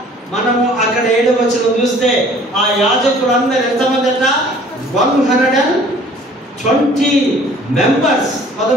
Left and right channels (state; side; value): normal; both; correlation 0.52